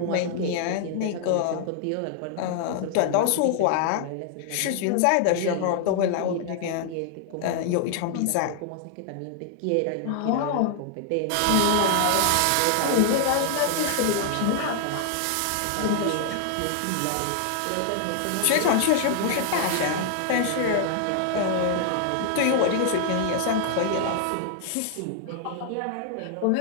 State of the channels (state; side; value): different; both; correlation 0.00